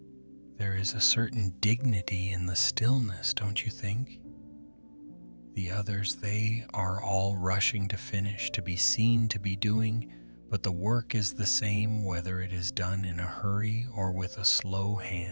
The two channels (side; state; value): both; inverted; correlation -1.00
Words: There is a certain dignity in the stillness, don't you think? The others, they are all rushing to finish, to be seen, to be doing, but the work is the same whether it is done in a hurry or with a slow